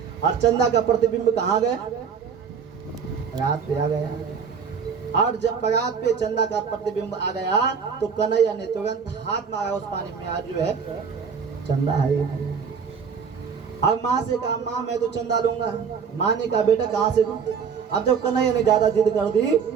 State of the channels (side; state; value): left; quieter; 6.4 dB